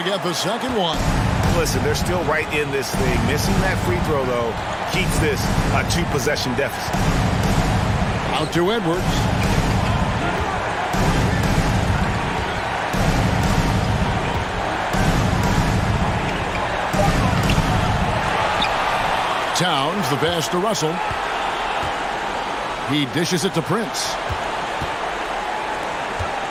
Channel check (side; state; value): both; identical; correlation 1.00